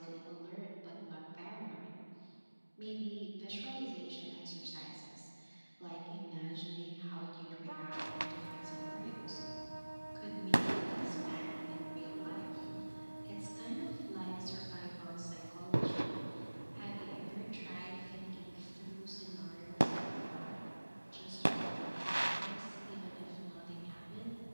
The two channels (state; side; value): inverted; both; correlation -1.00